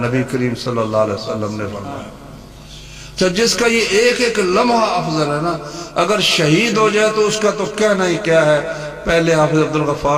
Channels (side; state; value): both; identical; correlation 1.00